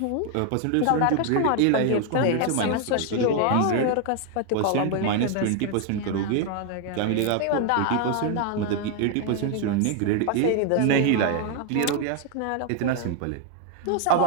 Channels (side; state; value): both; different; correlation 0.00